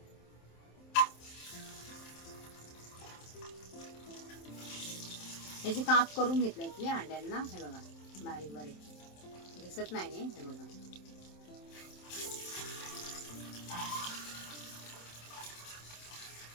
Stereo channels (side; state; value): right; late; 27 ms